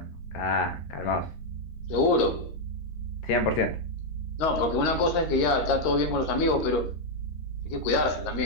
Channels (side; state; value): right; late; 13 ms